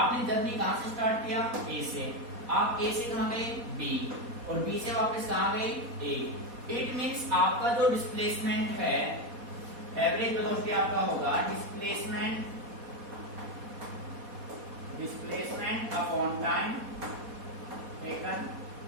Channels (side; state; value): left; late; 4.2 ms